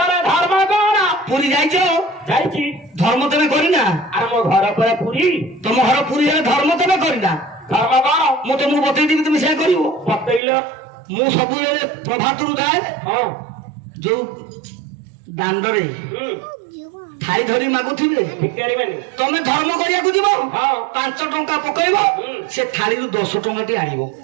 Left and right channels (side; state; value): left; drops out; at 10.4 s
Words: धर्म कोन पुरी जाइछो जाइछि धर्म तमे करी ना आर मो घर पर पुरी तुम घर पुरी हेले धर्म तमे करी ना धर्म कोन मु तुमको बतई देबी तुम से करिवो बतैलो मु सब बेले प्रभातरु गाए हां जो दांडरे थाई धरी मागुथिबे भिखारी माने तमे धर्म करिया को दिबो हां 5 टंका पकइबो से थाली रु 10 टंका टी आनिबो